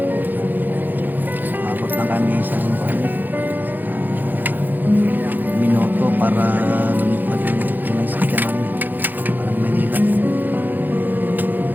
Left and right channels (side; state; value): left; late; 0.086 ms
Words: Abot na kami sa minuto para lumipad yung sakyan namin. Parang Manila.